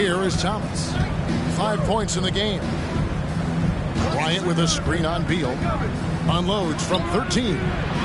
is Thomas. 5 points in the game. Bryant with a screen on Beal. Unloads from 13.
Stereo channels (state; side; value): identical; both; correlation 1.00